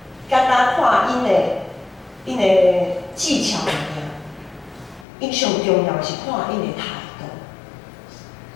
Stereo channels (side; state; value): right; drops out; at 5.1 s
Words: 简单看因的技巧尔，因上重要是看因的态度。